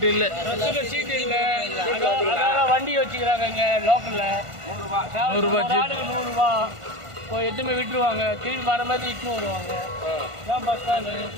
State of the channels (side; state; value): left; late; 1.5 ms